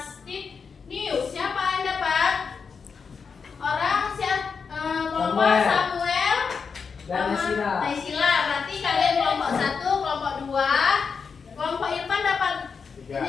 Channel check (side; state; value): right; quieter; 5.6 dB